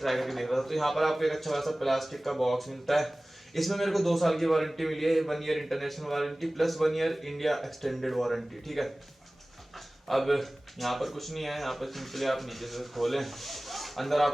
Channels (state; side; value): normal; both; correlation 0.98